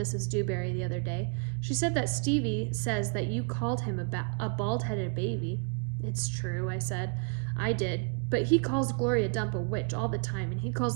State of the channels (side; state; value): left; quieter; 35.3 dB